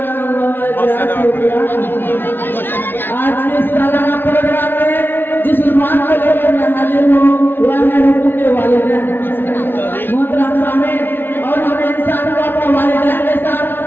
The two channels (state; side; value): late; right; 0.10 ms